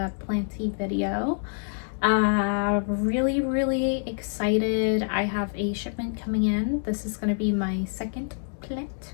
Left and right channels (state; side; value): silent; right; 61 dB below the other